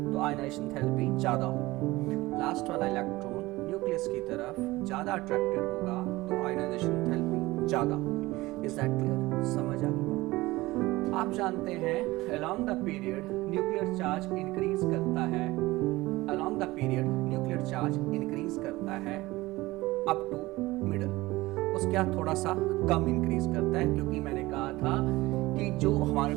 तो आयनाइजेशन एंथैल्पी ज्यादा होगी। लास्ट वाला इलेक्ट्रॉन न्यूक्लियस की तरफ ज्यादा अट्रैक्टेड होगा तो आयनाइजेशन एंथैल्पी ज्यादा होगी। Is that clear? समझ आ गई? आप जानते हैं along the period nuclear charge increase करता है, along the period nuclear charge increase करता है अप टू मिडल। उसके बाद थोड़ा सा कम इंक्रीज करता है, क्योंकि मैंने कहा था कि जो हमारे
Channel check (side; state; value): left; quieter; 19.6 dB